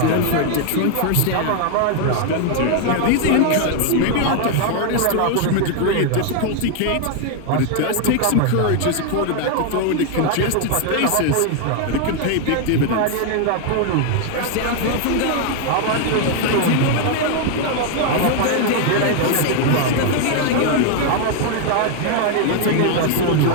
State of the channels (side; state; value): both; different; correlation 0.01